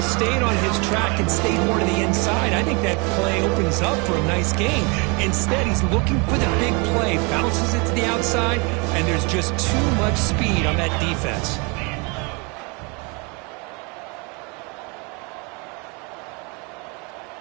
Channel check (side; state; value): left; quieter; 30.9 dB